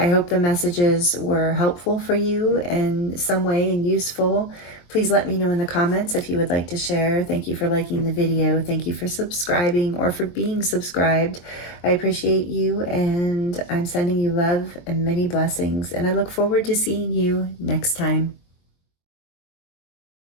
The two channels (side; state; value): right; late; 23 ms